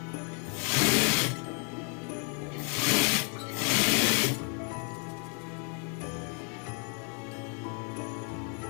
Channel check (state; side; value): quieter; right; 39.2 dB